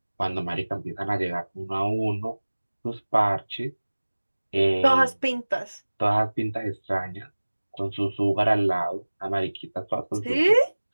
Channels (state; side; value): inverted; both; correlation -1.00